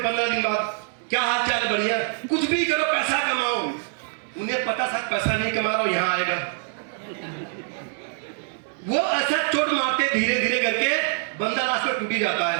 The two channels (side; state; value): left; silent; digital silence